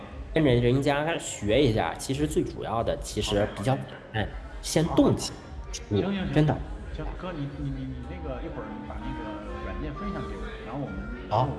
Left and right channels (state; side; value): identical; both; correlation 1.00